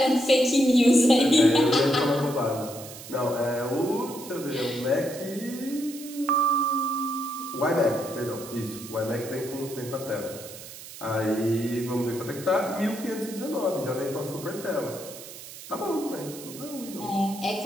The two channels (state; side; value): noise; right; hiss, 14 dB below the sound